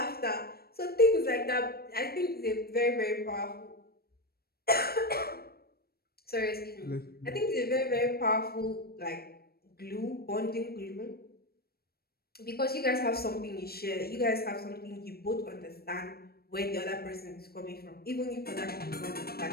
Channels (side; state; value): right; late; 0.45 ms